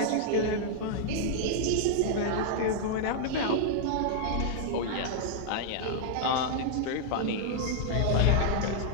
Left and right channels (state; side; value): different; both; correlation -0.01